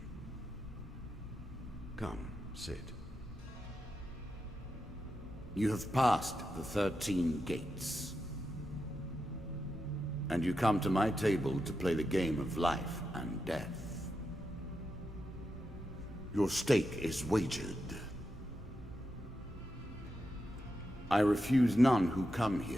Come, sit. You have passed the 13 gates. And you come to my table to play the game of life and death. Your stake is wagered. I refuse none who come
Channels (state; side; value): normal; both; correlation 0.87